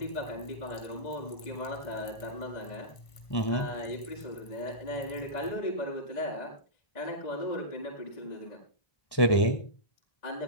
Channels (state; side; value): late; right; 1.5 ms